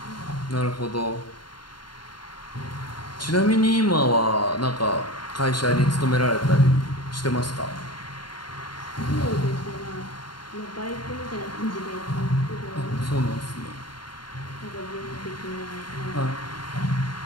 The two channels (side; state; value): right; late; 0.72 ms